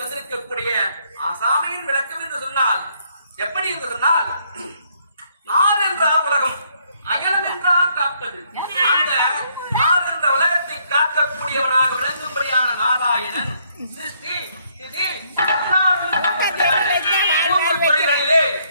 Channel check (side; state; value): both; inverted; correlation -0.69